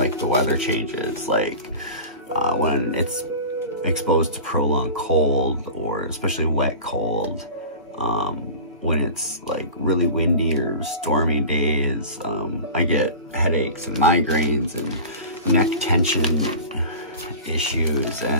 the weather changes, like when it's exposed to prolonged cold, or especially wet cold, when it's like really windy or stormy days, I get headaches and migraines and neck tension issues,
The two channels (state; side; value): inverted; both; correlation -0.34